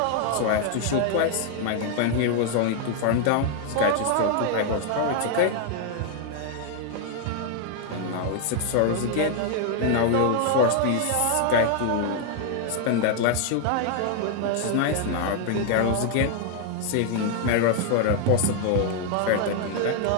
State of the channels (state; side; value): different; both; correlation 0.00